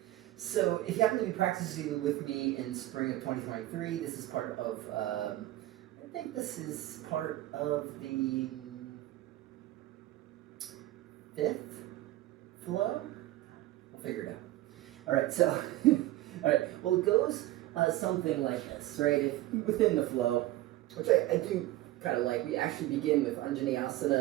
So if you happen to be practicing with me in spring of 2023, this is part of, I think this is part of the 5th flow? We'll figure it out. All right, so, all right, well, it goes something like this, right? If within the flow, which I do kind of like, we actually begin with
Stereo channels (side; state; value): left; quieter; 16.0 dB